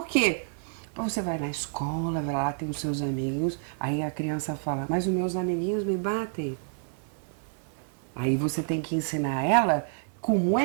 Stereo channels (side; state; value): left; silent; 59 dB below the other